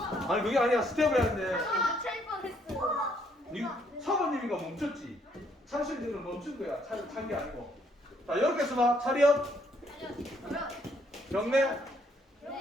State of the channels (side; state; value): both; normal; correlation 0.69